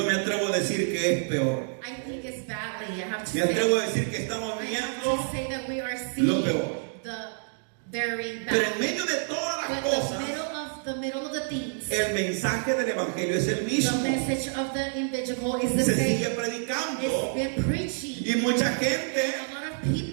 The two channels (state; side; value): silent; left; digital silence